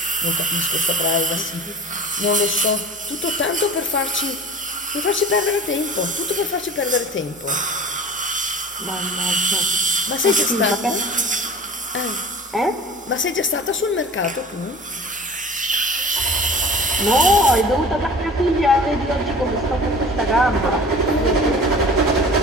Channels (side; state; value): both; normal; correlation 0.40